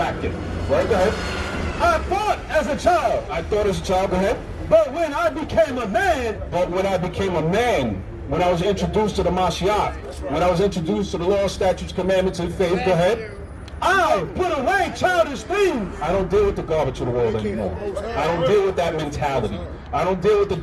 in. Right, go ahead. I thought as a child. I thought as a child, go ahead. But when I became a man. But when I became a man, when I was introduced to the Mashiach, when I was introduced to the law, statutes, commandments, and faith, go ahead. I put away childish things. I don't deal with the garbage of the world anymore. I don't deal with that mentality. I don't deal with the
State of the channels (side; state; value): both; identical; correlation 1.00